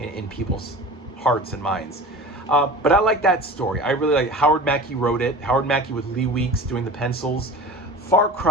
people's hearts and minds. But I like that story. I really like Howard Mackie wrote it. Howard Mackie with Lee Weeks doing the pencils. Far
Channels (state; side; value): normal; both; correlation 0.36